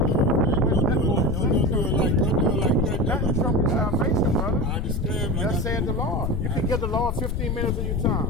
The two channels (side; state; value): left; noise; rumble, 1 dB below the sound